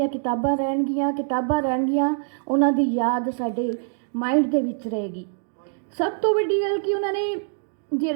ਕਿਤਾਬਾਂ ਰਹਿਣਗੀਆਂ, ਉਹਨਾਂ ਦੀ ਯਾਦ ਸਾਡੇ ਮਾਈਂਡ ਦੇ ਵਿੱਚ ਰਹੇਗੀ। ਸਭ ਤੋਂ ਵੱਡੀ ਗੱਲ ਕਿ ਉਹਨਾਂ ਨੇ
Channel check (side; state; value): left; silent; digital silence